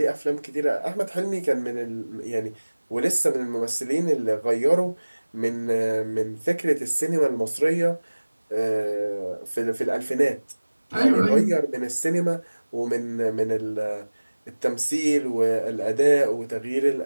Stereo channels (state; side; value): inverted; both; correlation -1.00